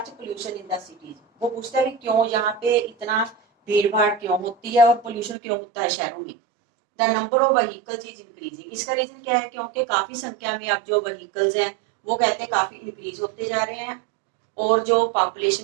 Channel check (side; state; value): left; drops out; at 5.4 s